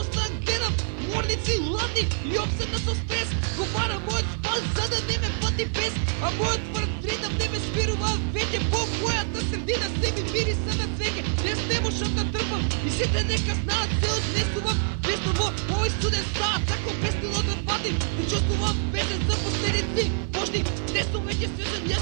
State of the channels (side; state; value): left; silent; digital silence